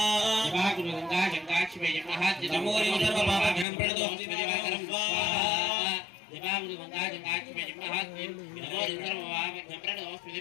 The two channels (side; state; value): right; drops out; at 3.7 s